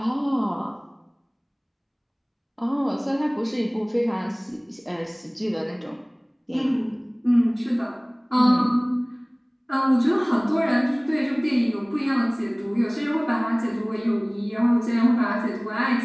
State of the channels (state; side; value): identical; both; correlation 1.00